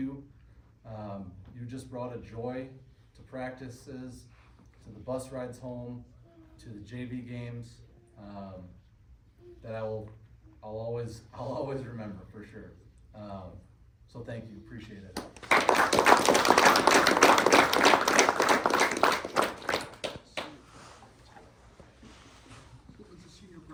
You just brought a joy to practices, to the bus rides home, to the JV games, that I'll always remember for sure. So thank you, appreciate it.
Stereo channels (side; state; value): both; identical; correlation 1.00